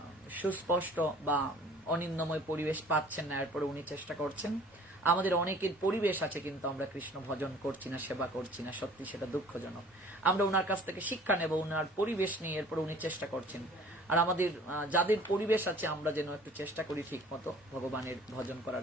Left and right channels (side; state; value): both; normal; correlation 0.51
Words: সুস্পষ্ট বা অনিন্দময় পরিবেশ পাচ্ছেন না, এরপরে উনি চেষ্টা করছেন। আমাদের অনেকের পরিবেশ আছে, কিন্তু আমরা কৃষ্ণ ভজন করছি না, সেবা করছি না, সত্যি সেটা দুঃখজনক। আমরা ওনার কাছ থেকে শিক্ষা নেব, ওনার পরিবেশ নিয়ে, এরপরে উনি চেষ্টা করছেন। আর আমাদের যাদের পরিবেশ আছে আমরা যেন একটু চেষ্টা করি ঠিক মতো ভগবানের ভজন